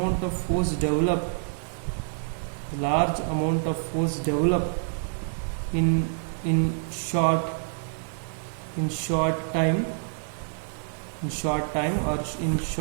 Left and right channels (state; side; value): silent; left; digital silence